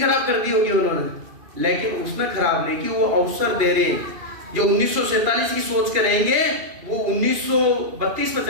खराब कर दी होगी उन्होंने, लेकिन उसने खराब नहीं की, वो अवसर दे रहे हैं। जो 1947 की सोच के रहेंगे वो 1932 में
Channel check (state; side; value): late; left; 2.5 ms